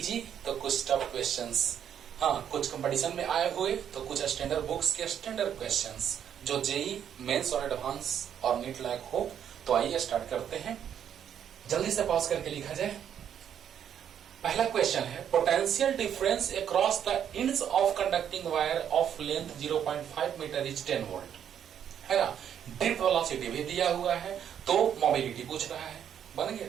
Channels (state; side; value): quieter; left; 9.1 dB